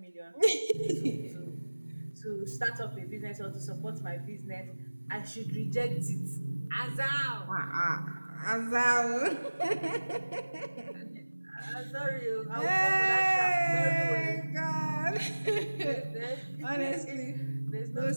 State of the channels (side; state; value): both; inverted; correlation -1.00